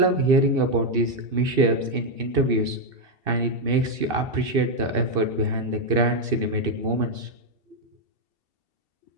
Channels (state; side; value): late; left; 2.7 ms